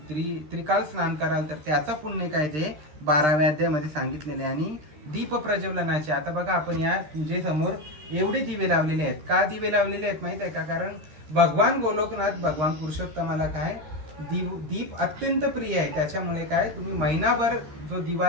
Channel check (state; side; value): late; left; 13 ms